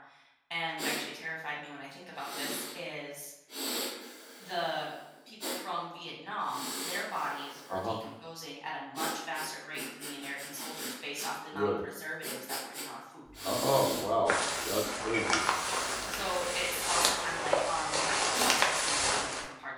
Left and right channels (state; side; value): identical; both; correlation 1.00